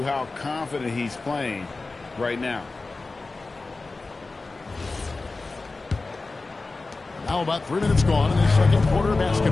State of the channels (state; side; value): quieter; right; 3.6 dB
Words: how confident he's playing right now. Now about 3 minutes gone in the second quarter of